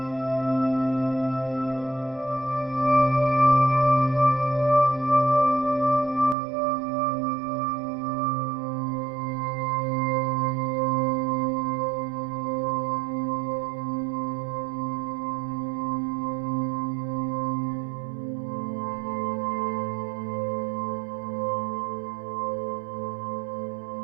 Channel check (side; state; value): left; drops out; at 6.4 s